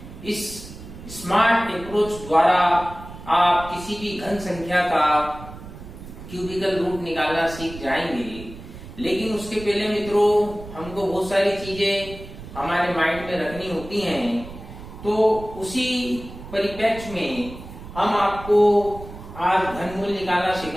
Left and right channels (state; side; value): noise; right; rumble, 14 dB below the sound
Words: इस स्मार्ट अप्रोच द्वारा आप किसी भी घन संख्या का क्यूबिकल रूट निकालना सीख जाएंगे। लेकिन उसके पहले मित्रों, हमको बहुत सारी चीजें हमारे माइंड में रखनी होती हैं। तो उसी परिप्रेक्ष्य में हम आपको आज घनमूल निकालना